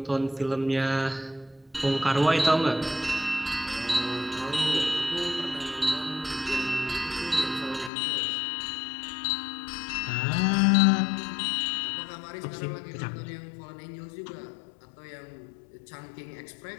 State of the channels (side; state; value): right; drops out; at 7.9 s